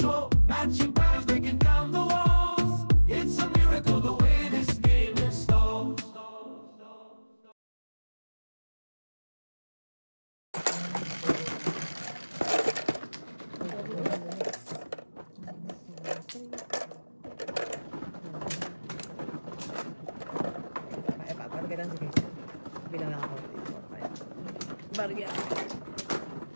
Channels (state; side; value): inverted; both; correlation -1.00